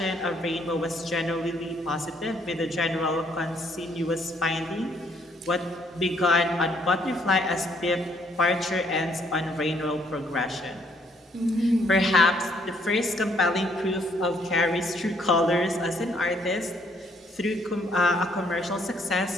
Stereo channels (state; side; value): normal; both; correlation 0.68